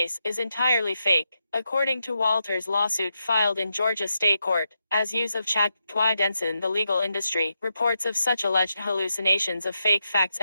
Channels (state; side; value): inverted; both; correlation -0.85